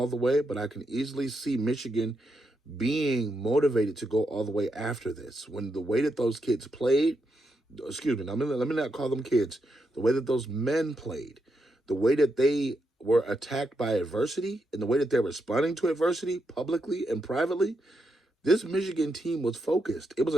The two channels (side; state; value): both; normal; correlation 0.82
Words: the way, but I can easily see Michigan being motivated to go all the way after this. When the way that those kids played, excuse me, let me not call them kids, the way that those men played, the way that they were attacked by adversity, and the way that they're responding to adversity publicly and privately, this Michigan team was focused. It was